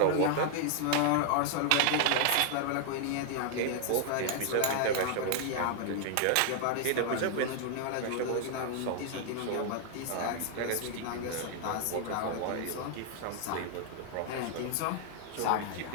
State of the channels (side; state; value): both; different; correlation 0.00